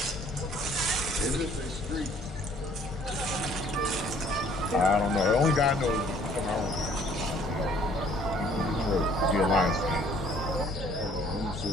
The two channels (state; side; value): normal; both; correlation 0.59